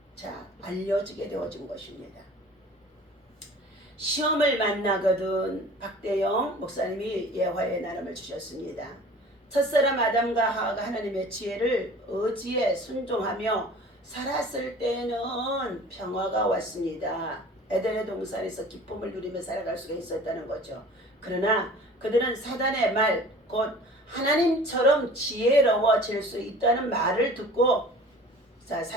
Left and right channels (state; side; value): normal; both; correlation 0.45